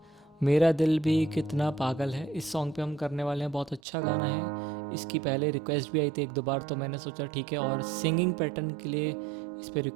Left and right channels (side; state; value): left; drops out; at 3.8 s